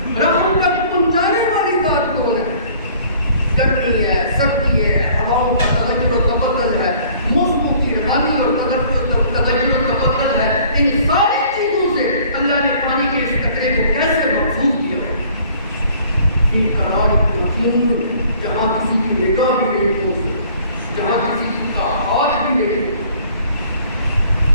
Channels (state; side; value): inverted; both; correlation -0.55